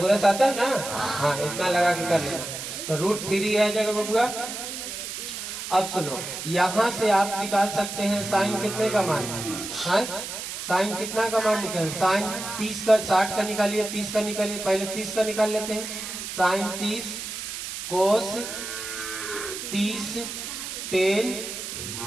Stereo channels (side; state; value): right; noise; hiss, 7 dB below the sound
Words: आता है ना हाँ इतना लगा के कर लेना। तो रूट 3 आ जाएगा बबुआ। अब सुनो यहाँ से आप निकाल सकते हैं साइन कितने का मान है साइन कितना का मान निकाल, साइन 30 का 60 का निकालिए, 30 का निकालिए, पहले 30 का निकाल लेते हैं। साइन 30 कोस 30 टेन